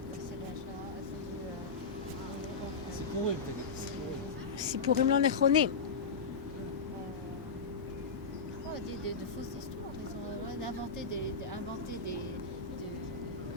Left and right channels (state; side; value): quieter; right; 4.7 dB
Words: סיפורים לא נכונים. De fausses histoires, ils ont inventé